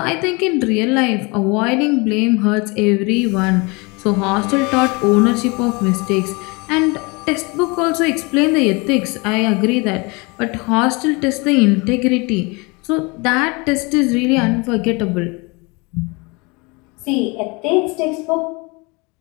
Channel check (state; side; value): quieter; right; 27.7 dB